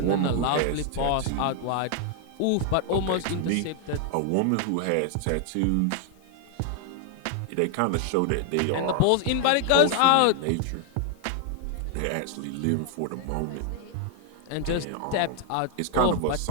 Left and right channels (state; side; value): different; both; correlation 0.00